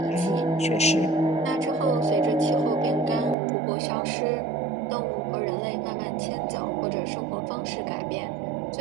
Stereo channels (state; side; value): drops out; left; at 3.4 s